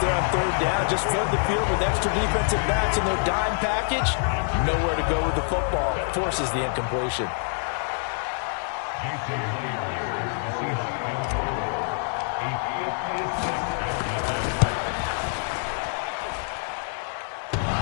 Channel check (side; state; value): right; silent; 58 dB below the other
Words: on 3rd down. Just flood the field with extra defensive backs in their dime package. Nowhere to go with the football. Forces the incompletion.